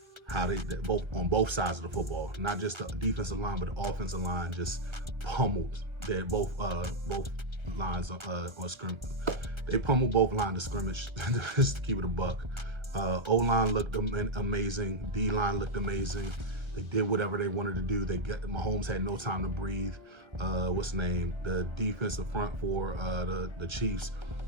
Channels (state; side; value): late; left; 1.3 ms